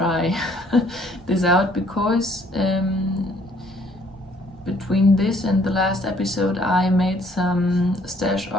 this out, because between this and the last episode I made some stash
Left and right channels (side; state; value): both; normal; correlation 0.62